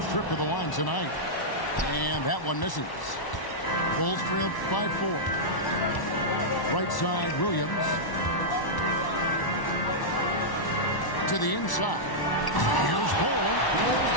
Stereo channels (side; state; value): right; late; 1.1 ms